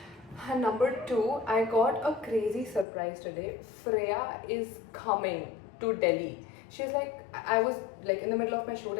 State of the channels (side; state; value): right; drops out; at 2.9 s